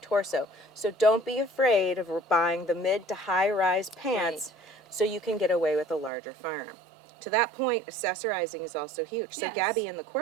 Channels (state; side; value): drops out; left; at 6.1 s